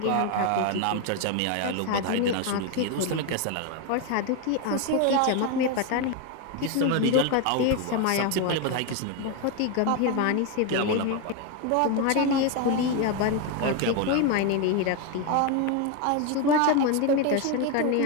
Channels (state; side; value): different; both; correlation 0.02